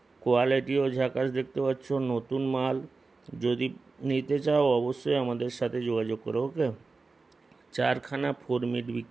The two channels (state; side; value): quieter; left; 4.0 dB